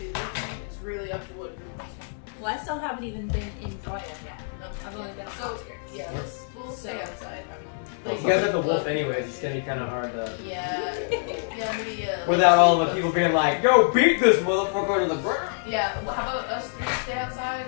with you. It's really up to what group wants to. Well, I still haven't even been in Troya yet. I've only been on So, outskirts. yeah, we'll stay outside. I mean, If you guys have the wolf anyways, it's gonna be kind of hard to. yeah, maybe. Without all the people being like, yo, beat this motherfucker to the ground. Yeah, well, how about us three stay outside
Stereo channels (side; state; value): right; silent; digital silence